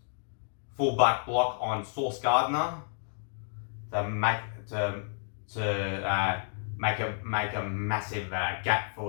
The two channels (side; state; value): right; silent; digital silence